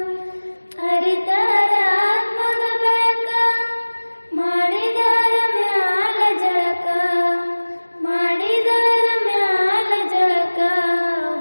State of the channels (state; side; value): inverted; both; correlation -1.00